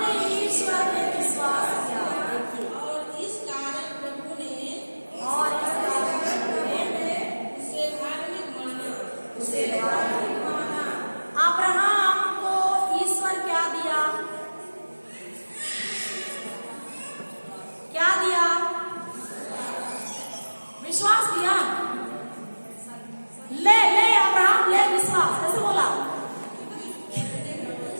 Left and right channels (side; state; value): both; inverted; correlation -1.00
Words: ने ईश्वर में विश्वास किया। देखिए, और इस कारण प्रभु ने उसे धार्मिक माना। अब्राहम को ईश्वर क्या दिया? क्या दिया? विश्वास दिया। ले अब्राहम ले विश्वास। कैसे बोला?